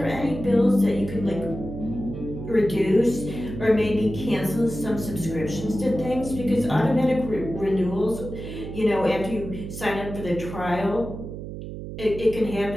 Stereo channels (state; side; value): noise; right; hum, 9 dB below the sound